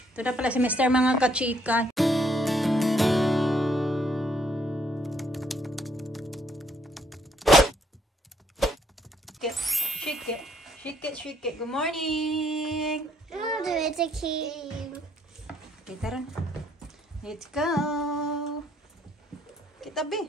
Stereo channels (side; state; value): both; normal; correlation 0.69